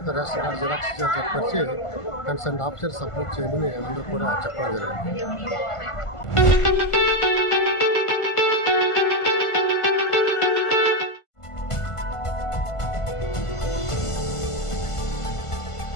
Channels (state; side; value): late; right; 1.5 ms